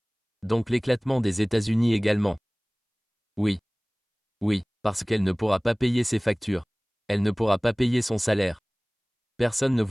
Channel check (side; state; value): both; identical; correlation 1.00